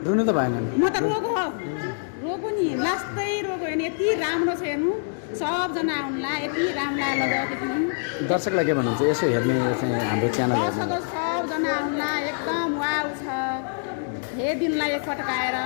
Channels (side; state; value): right; silent; digital silence